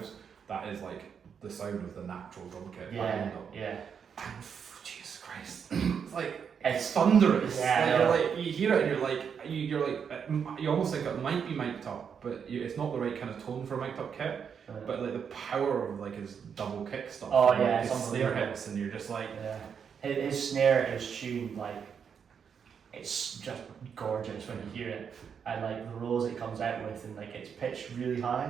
That is like the sound of the natural drum kit behind them. yeah. And Jesus Christ, it's like it's thunderous. Yeah, Like, you're like you hear it and you're like you almost think it might be mic'd up, but it's not the right kind of tone for a mic'd up kit. But like the power of like his double kick stuff. Oh, and, yeah, like, his it's snare unbelievable. hits, and you're just like Yeah, his snare is tuned like it's just gorgeous when you hear it, and like the rolls it comes out with, and like it's pitched really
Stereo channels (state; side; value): quieter; left; 7.1 dB